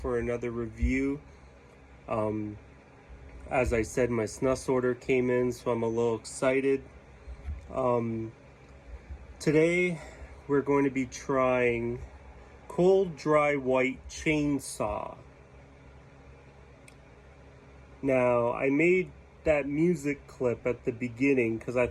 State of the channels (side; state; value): both; identical; correlation 1.00